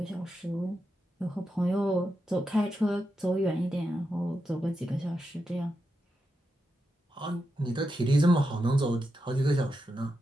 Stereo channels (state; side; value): normal; both; correlation 0.87